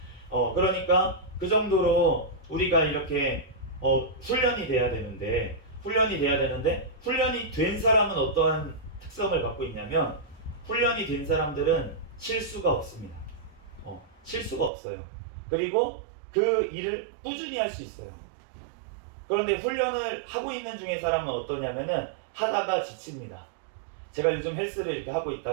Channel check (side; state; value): left; drops out; at 14.7 s